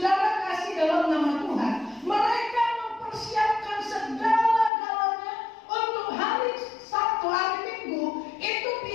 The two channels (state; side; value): drops out; right; at 4.7 s